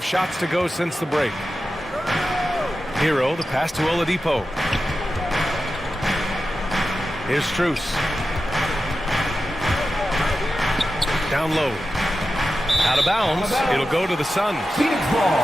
shots to go since the break. Hero, the pass to Oladipo. Here's Strus. Down low. Out of bounds. It'll go to the Suns. Phoenix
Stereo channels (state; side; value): normal; both; correlation 0.92